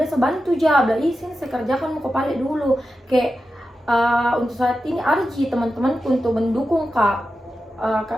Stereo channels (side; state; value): both; normal; correlation 0.91